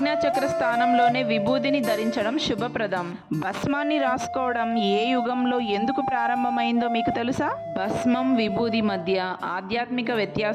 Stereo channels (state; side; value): identical; both; correlation 1.00